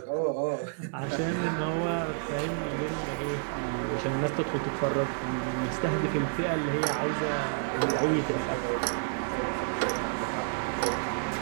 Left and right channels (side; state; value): left; silent; digital silence